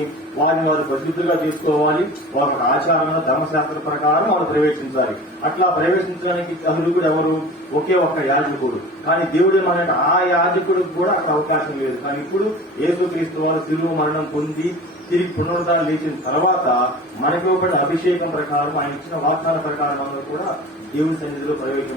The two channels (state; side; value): normal; both; correlation 0.38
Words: వారిని వారు పరిశుద్ధులుగా చేసుకోవాలి. వారి ఆచారంగా ధర్మశాస్త్ర ప్రకారం వారు ప్రవేశించాలి. అట్లా ప్రవేశించడానికి అర్హుడు ఎవరు? ఒకే ఒక్క యాజకుడు. కానీ దేవుడు ఏమన్నాడు, ఆ యాజకుడికి కూడా అక్కడ అవకాశం లేదు. కానీ ఇప్పుడు యేసుక్రీస్తు వారు శిలువ మరణం పొంది తిరిగి పునరుద్ధరణ లేచిన తర్వాత మనకి ఇవ్వబడిన అభిషేకం ప్రకారం, ఆయన ఇచ్చిన వాగ్దాన ప్రకారం అందరూ కూడా దేవుని సన్నిధిలో